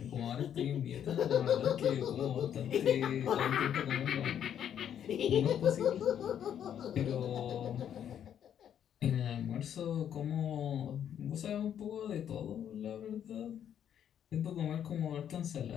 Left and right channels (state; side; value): quieter; right; 9.5 dB